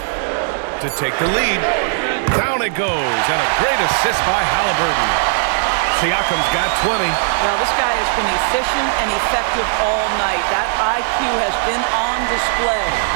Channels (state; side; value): silent; left; 62 dB below the other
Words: To take the lead. Down it goes. And a great assist by Halliburton. Siakam's got 20. Well, this guy has been efficient and effective all night. That IQ has been on display.